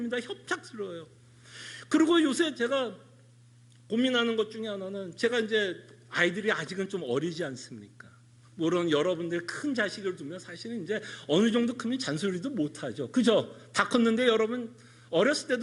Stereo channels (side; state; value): both; identical; correlation 1.00